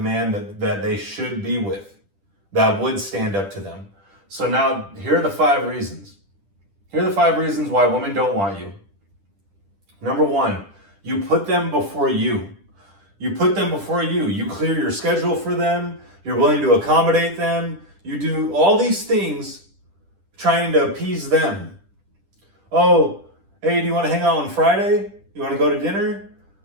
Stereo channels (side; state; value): left; late; 10 ms